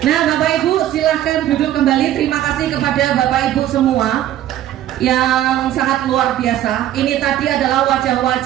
Bapak Ibu silahkan duduk kembali. Terima kasih kepada Bapak Ibu semua yang sangat luar biasa. Ini tadi adalah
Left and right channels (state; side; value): quieter; left; 12.4 dB